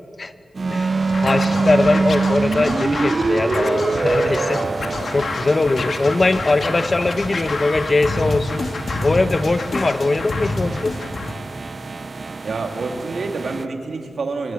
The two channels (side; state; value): both; normal; correlation 0.94